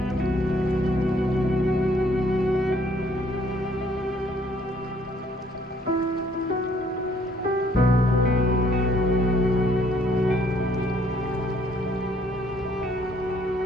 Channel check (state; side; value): normal; both; correlation 0.64